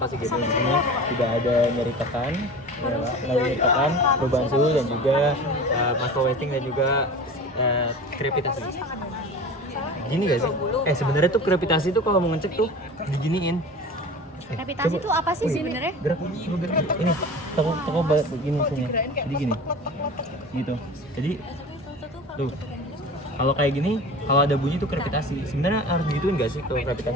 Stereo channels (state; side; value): normal; both; correlation 0.36